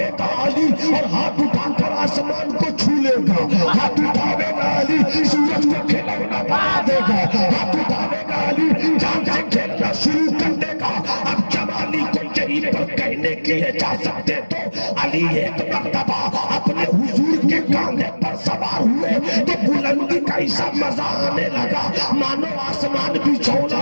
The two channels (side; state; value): both; inverted; correlation -1.00